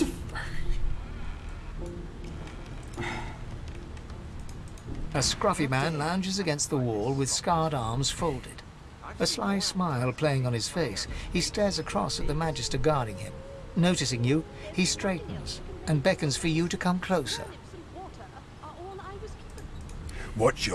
A scruffy man lounges against the wall with scarred arms folded. A sly smile playing on his face, he stares across at the Magister guarding him. Noticing you, he straightens and beckons for you to come closer. Watch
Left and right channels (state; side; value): identical; both; correlation 1.00